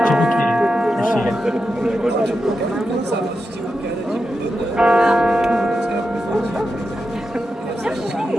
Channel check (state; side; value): normal; both; correlation 0.89